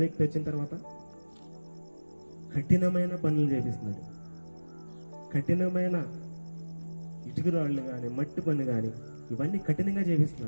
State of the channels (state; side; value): inverted; both; correlation -1.00